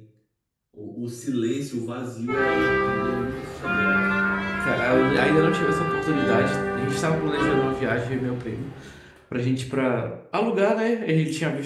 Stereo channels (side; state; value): both; identical; correlation 1.00